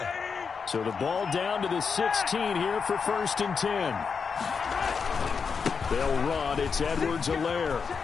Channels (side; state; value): right; quieter; 5.7 dB